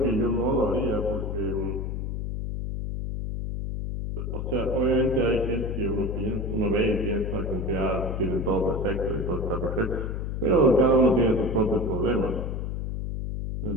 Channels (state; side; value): noise; left; hum, 3 dB below the sound